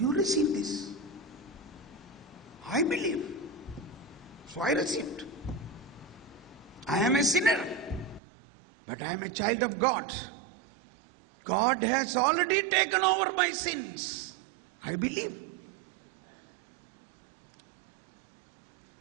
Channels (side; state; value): left; drops out; at 8.2 s